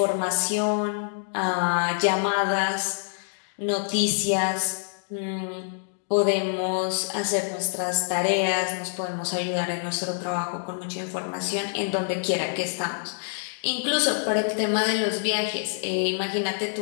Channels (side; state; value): right; silent; digital silence